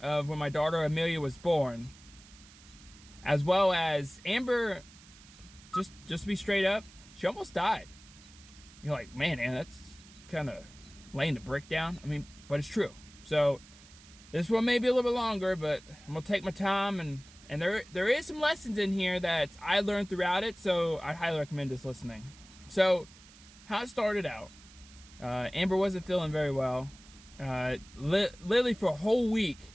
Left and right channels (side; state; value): right; noise; hiss, 22 dB below the sound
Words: of when my daughter Amelia was born, as well as Amber. Just to be straight up, she almost died. You're like, man, that's kind of laying the brick down. I mean, but it's true. So this one may be a little bit longer, but I'm gonna take my time, and there is some lessons in here that I learned throughout it. So I highly recommend this listening. So, how it started out, Amber wasn't feeling very well. Literally for a whole week,